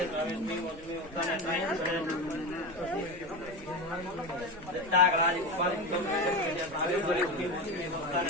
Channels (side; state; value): both; normal; correlation 0.21